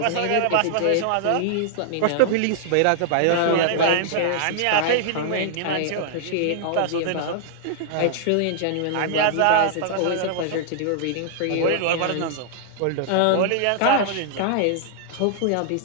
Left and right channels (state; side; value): different; both; correlation -0.01